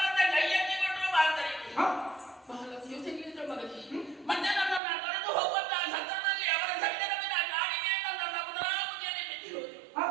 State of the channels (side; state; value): left; drops out; at 4.8 s